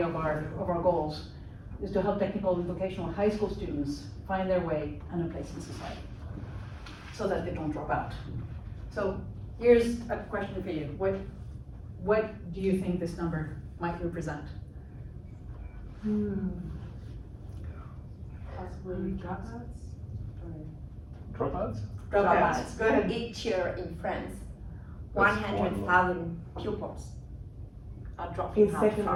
of our goals, is to help technical and vocational high school students find their way and a place in society, so that they don't drop out. So here's a question for you. What do you think this number might represent? Possibly dropouts? Dropouts? Dropouts. Go ahead. Each year in France, That's 100,000 pupils are dropping In out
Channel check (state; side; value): identical; both; correlation 1.00